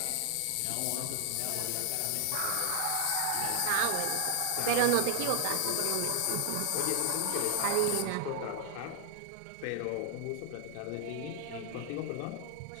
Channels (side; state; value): both; different; correlation 0.00